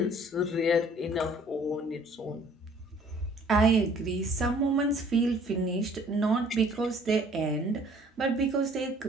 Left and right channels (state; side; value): normal; both; correlation 0.56